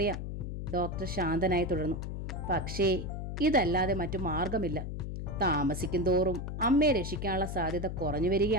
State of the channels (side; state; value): left; noise; hum, 5 dB below the sound